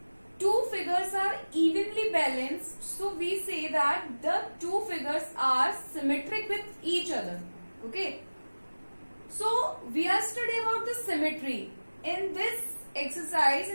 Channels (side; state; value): both; inverted; correlation -1.00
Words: two figures are evenly balanced, so we say that the two figures are symmetric with each other. Okay, so we are studying about the symmetry. In this exercise,